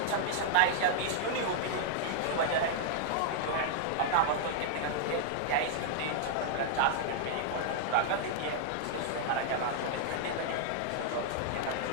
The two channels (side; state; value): both; different; correlation -0.01